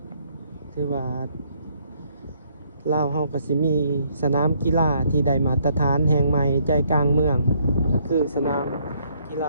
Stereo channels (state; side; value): inverted; both; correlation -0.68